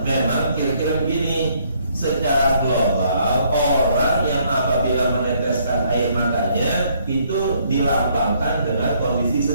memang kira-kira begini. Secara global, orang yang apabila meneteskan air matanya itu dilambangkan dengan kondisi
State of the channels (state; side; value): inverted; both; correlation -0.67